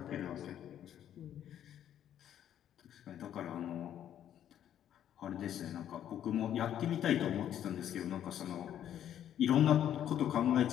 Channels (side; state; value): right; quieter; 10.5 dB